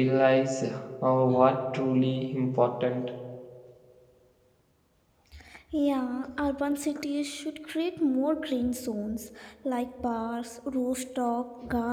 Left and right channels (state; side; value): identical; both; correlation 1.00